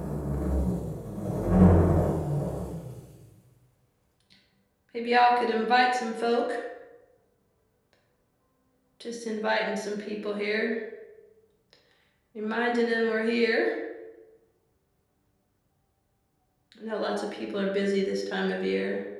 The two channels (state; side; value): identical; both; correlation 1.00